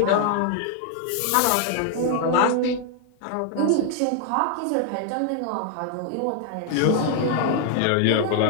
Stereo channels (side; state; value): both; different; correlation 0.00